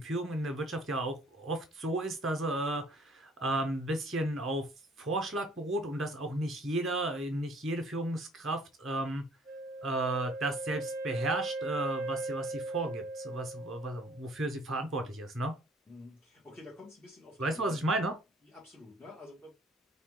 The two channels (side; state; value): both; normal; correlation 0.57